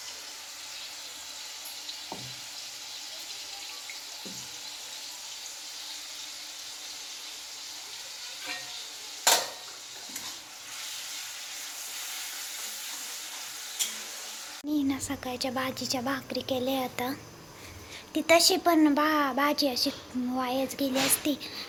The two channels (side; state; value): both; identical; correlation 1.00